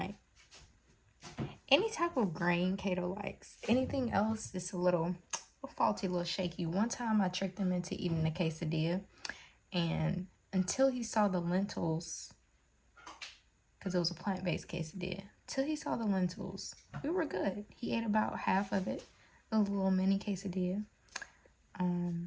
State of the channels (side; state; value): both; identical; correlation 1.00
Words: Any type of grain Kato likes. Anything else is a little faulty, a little shaky. One time I tricked him into eating a quesadilla, and until he saw the lentils, because it was a plant-based quesadilla, till he saw the lentils, we were good. He ate about half of it, a little mini quesadilla.